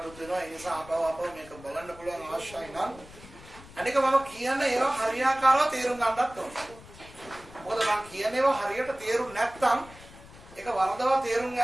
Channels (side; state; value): left; noise; rumble, 19 dB below the sound